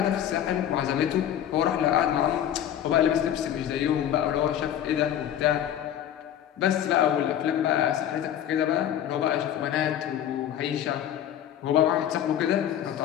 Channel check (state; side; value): quieter; right; 10.6 dB